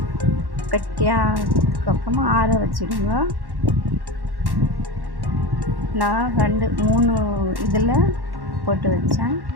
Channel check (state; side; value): late; left; 1.1 ms